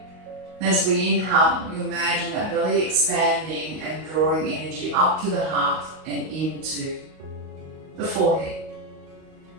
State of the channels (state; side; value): late; left; 38 ms